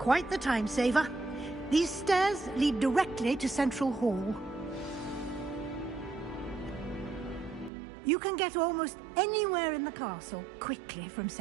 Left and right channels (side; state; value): left; drops out; at 7.7 s